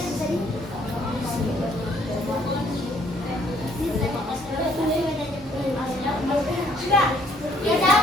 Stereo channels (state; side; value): normal; both; correlation 0.64